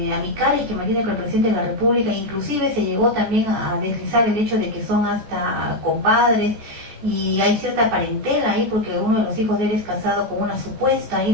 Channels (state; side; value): late; left; 14 ms